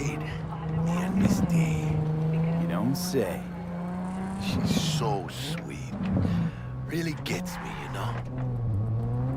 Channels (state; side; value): identical; both; correlation 1.00